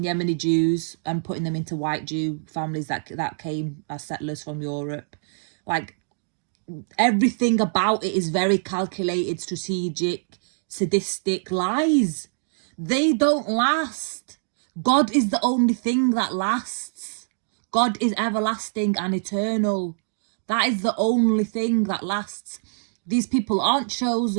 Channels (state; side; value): silent; left; digital silence